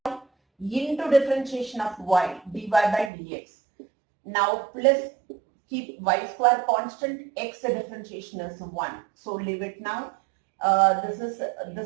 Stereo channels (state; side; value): drops out; left; at 3.1 s